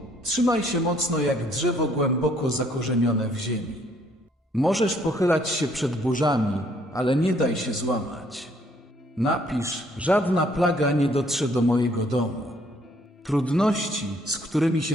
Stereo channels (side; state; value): both; normal; correlation 0.65